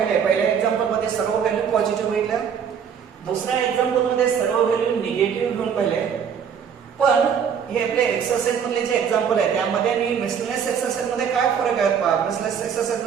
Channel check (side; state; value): left; quieter; 7.4 dB